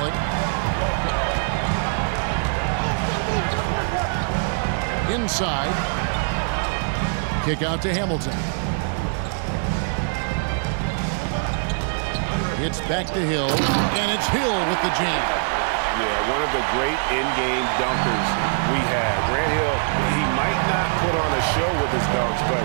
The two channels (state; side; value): silent; left; digital silence